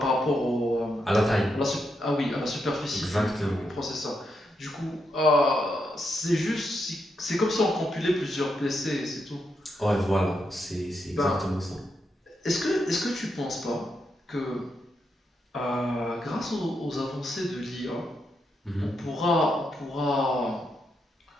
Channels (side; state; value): both; normal; correlation 0.82